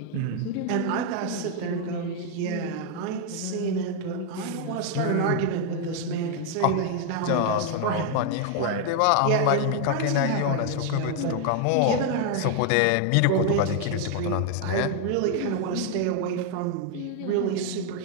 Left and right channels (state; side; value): different; both; correlation 0.00